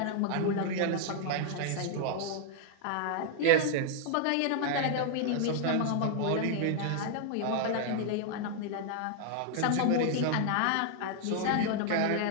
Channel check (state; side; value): different; both; correlation -0.01